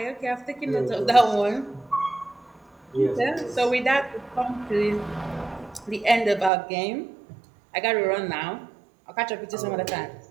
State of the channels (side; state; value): left; drops out; at 6.5 s